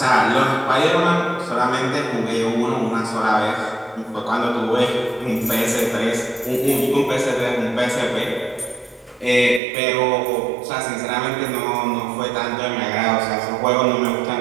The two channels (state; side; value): drops out; left; at 9.6 s